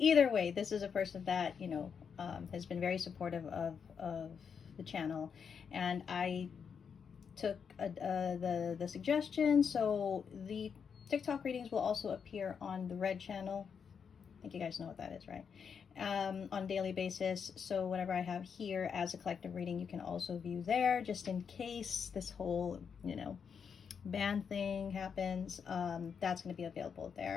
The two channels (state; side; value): quieter; right; 6.7 dB